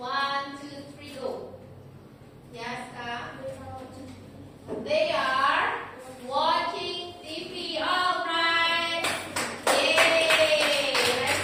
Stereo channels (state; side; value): identical; both; correlation 1.00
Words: 2, 3, go. Yes, Kak. They are watching TV. Alright. Yay.